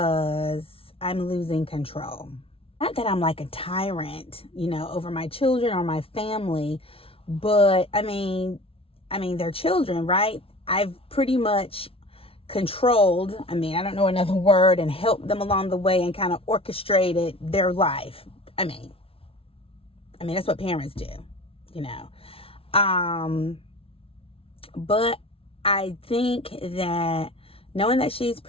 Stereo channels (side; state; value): right; late; 0.27 ms